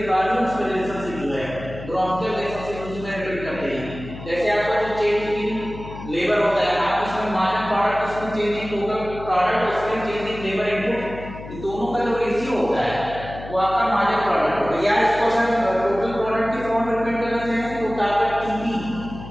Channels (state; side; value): noise; left; hum, 13 dB below the sound